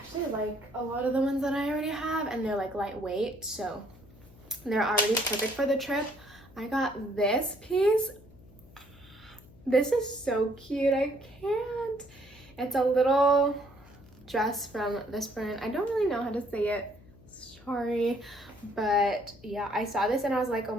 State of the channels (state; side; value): noise; left; hum, 23 dB below the sound